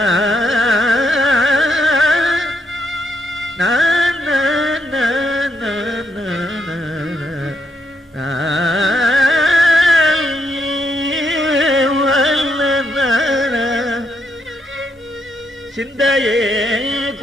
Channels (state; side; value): normal; both; correlation 0.77